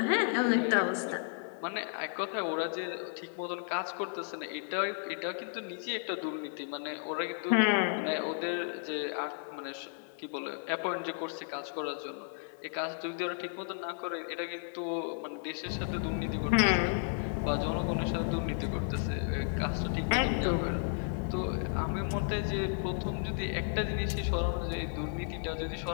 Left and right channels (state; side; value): silent; right; digital silence